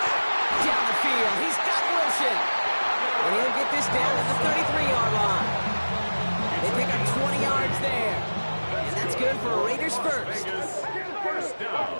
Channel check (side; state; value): both; inverted; correlation -1.00